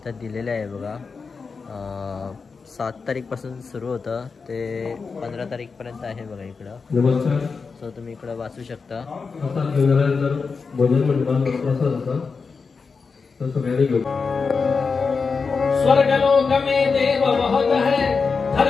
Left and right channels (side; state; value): right; quieter; 4.9 dB